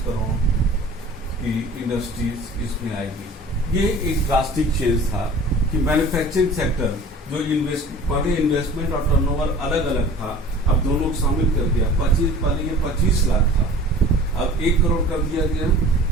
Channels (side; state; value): both; normal; correlation 0.44